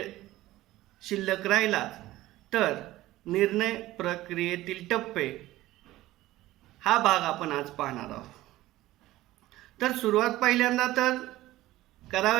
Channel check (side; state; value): left; quieter; 16.4 dB